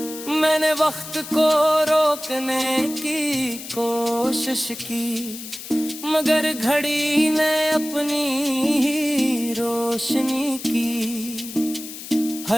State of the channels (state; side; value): noise; left; hiss, 11 dB below the sound